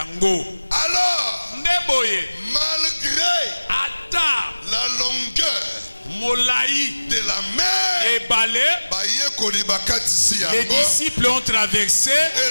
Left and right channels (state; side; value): inverted; both; correlation -1.00